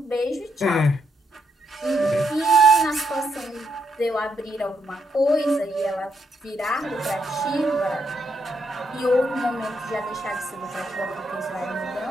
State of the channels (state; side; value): normal; both; correlation 0.78